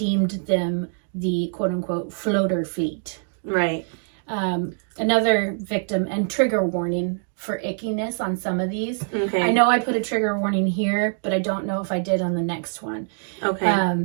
them the quote-unquote floater fleet. Right. Another victim, and trigger warning for ickiness on some of these. Okay. I know I put a trigger warning here, but I don't know if I did on the next one. Okay.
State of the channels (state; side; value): silent; left; 63 dB below the other